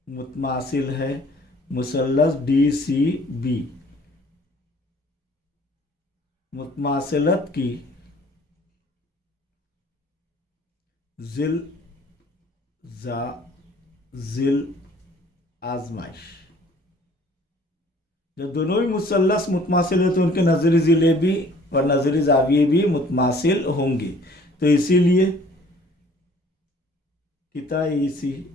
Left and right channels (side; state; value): both; normal; correlation 0.54